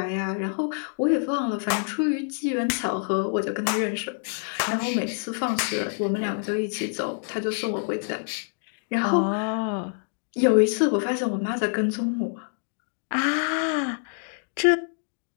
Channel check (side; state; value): right; silent; digital silence